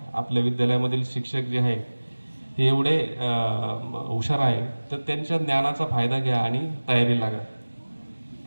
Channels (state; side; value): inverted; both; correlation -1.00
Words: आपल्या विद्यालयामधील शिक्षक जे आहे हे एवढे हुशार आहे, तर त्यांच्या ज्ञानाचा फायदा घ्या आणि तयारी लागा.